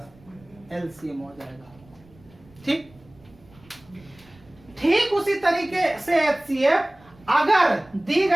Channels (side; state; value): right; noise; rumble, 27 dB below the sound